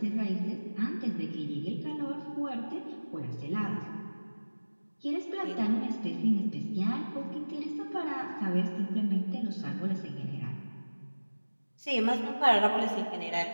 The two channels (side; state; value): both; inverted; correlation -1.00